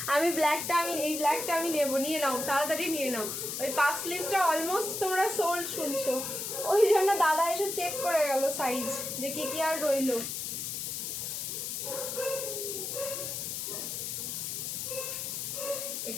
আমি এই ব্ল্যাকটা আমি নেবো, নিয়ে নাও তাড়াতাড়ি নিয়ে নাও। ওই পাফ স্লিভসটা অলমোস্ট তোমরা সোল্ড শুনছো, ওই জন্য দাদা এসে চেক করে গেল সাইজ যে কি কি আর রইলো।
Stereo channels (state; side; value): noise; left; hiss, 4 dB below the sound